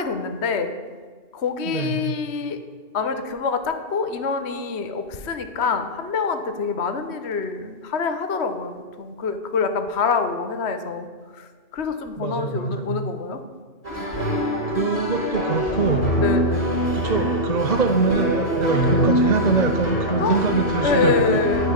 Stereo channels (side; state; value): right; late; 3.1 ms